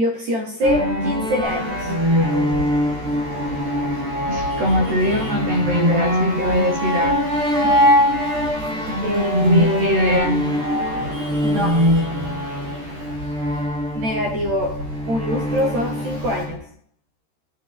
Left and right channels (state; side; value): late; left; 13 ms